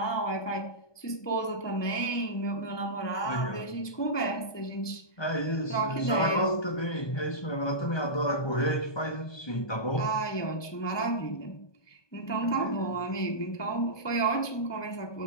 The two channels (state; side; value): late; right; 1.2 ms